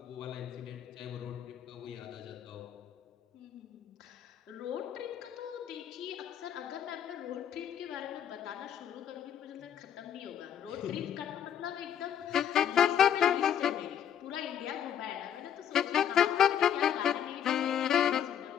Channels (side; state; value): right; quieter; 9.3 dB